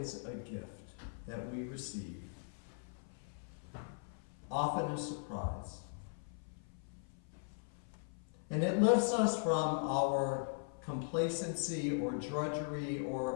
a gift that we receive, often a surprise. And it lifts us from our complacency or drudgery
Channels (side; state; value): right; silent; 51 dB below the other